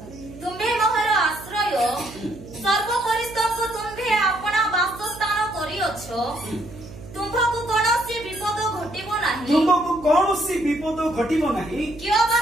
तुम्बे मोहर आश्रय सर्वकरिष्ठको तुम्भे आपना वासस्थान करिअछो तुमको कोनोसी विपद घटिबो नाही तुमको कोनोसी विपद घटिबो नाही कियोबा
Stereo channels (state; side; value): noise; right; hum, 16 dB below the sound